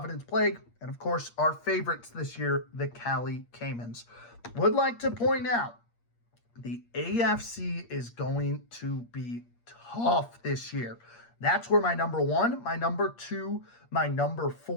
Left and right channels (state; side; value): late; right; 8.5 ms